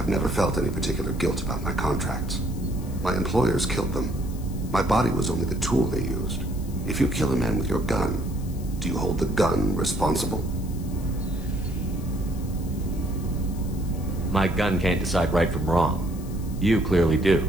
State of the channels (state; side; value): noise; left; hiss, 20 dB below the sound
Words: never felt any particular guilt about my contracts. My employers killed them. My body was only the tool they used. If you kill a man with your gun, do you hold the gun responsible? My gun can't decide right from wrong. You clearly